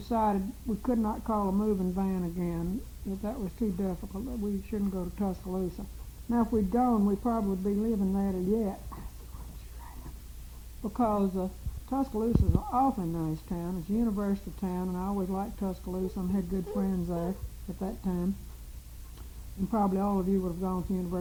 we could not call a moving van again, that was too difficult, that we shouldn't go to Tuscaloosa. Now, if we'd gone, we'd probably be living there yet, because Tuscaloosa is an awfully nice town. It's a university town, and I always liked Tuscaloosa and had good friends there at that time. And probably all of you would have gone to the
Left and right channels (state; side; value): identical; both; correlation 1.00